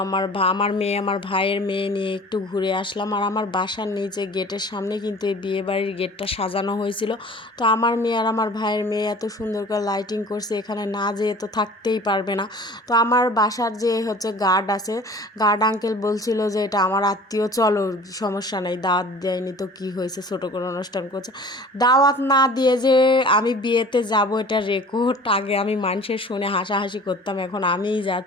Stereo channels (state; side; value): normal; both; correlation 0.45